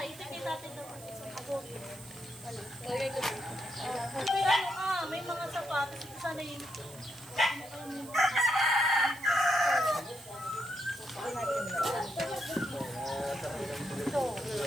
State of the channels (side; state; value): right; noise; hiss, 17 dB below the sound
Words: ito kita natin doon. Ako. May mga sapatos. Ito sana yung... Ito